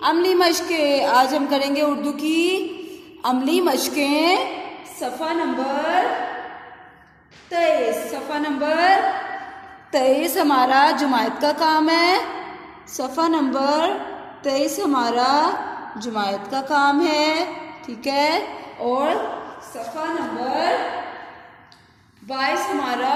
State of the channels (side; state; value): both; identical; correlation 1.00